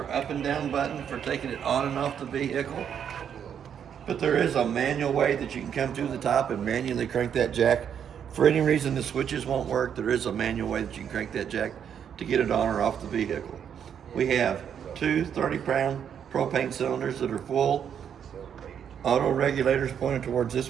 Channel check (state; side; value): quieter; left; 8.4 dB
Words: up and down button for taking it on and off the vehicle. But there is a manual way that you can come to the top and manually crank that jack. For any reason the switches won't work, there is a manual way that you can crank that jack to get it on or off the vehicle. We have two 30-pound propane cylinders that are full. Auto regulators pointed towards this